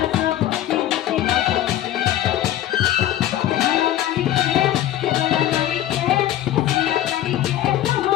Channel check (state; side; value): quieter; right; 12.8 dB